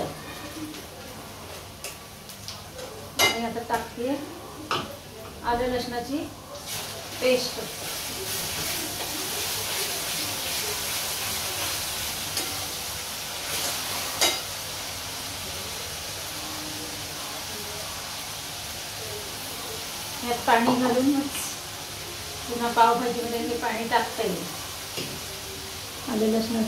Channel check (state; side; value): identical; both; correlation 1.00